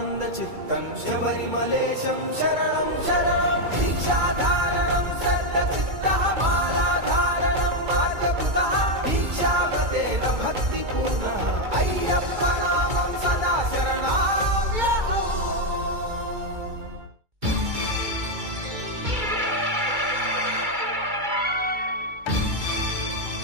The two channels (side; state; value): left; late; 2.3 ms